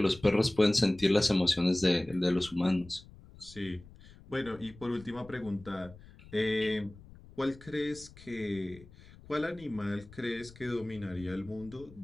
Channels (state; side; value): noise; left; rumble, 21 dB below the sound